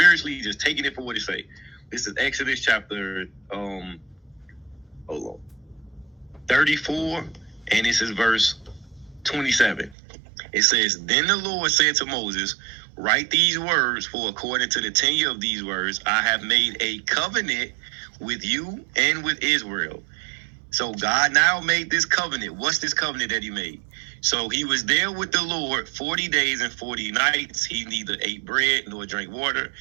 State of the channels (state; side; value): drops out; left; at 10.0 s